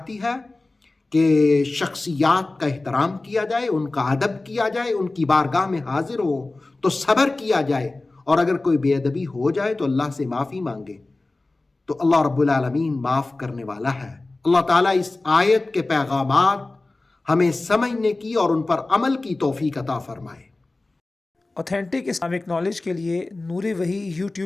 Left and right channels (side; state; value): right; quieter; 3.1 dB